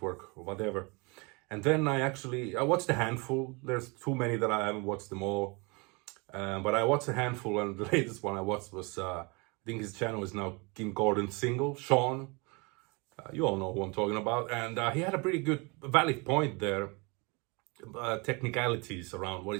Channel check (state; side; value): quieter; left; 29.0 dB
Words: or whatever. And then I watched a handful. There's too many that I haven't watched them all. But I watched a handful, and the latest one I watched was, I think his channel is now Kim Gordon's single, Shawn. You all know who I'm talking about. And he had a pretty good, valid point there. Technicalities around what